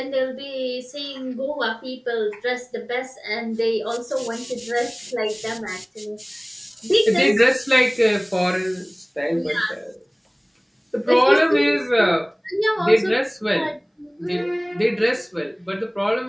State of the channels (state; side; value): identical; both; correlation 1.00